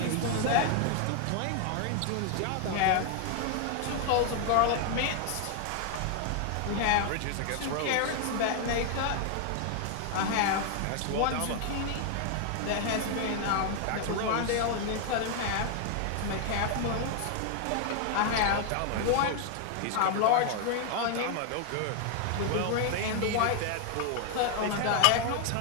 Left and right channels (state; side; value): different; both; correlation 0.00